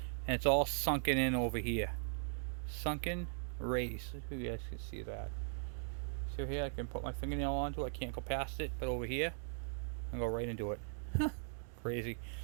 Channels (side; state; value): left; silent; digital silence